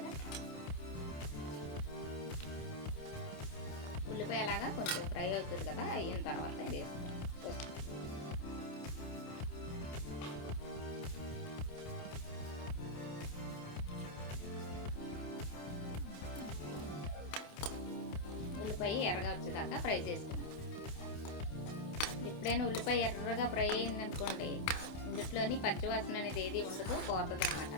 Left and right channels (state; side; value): late; right; 27 ms